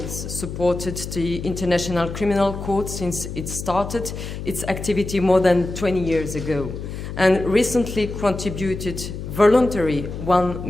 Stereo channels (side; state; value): left; noise; hum, 8 dB below the sound